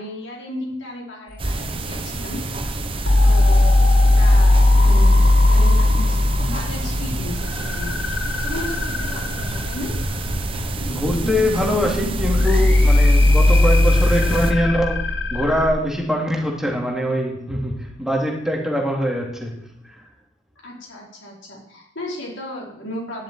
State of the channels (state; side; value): normal; both; correlation 0.90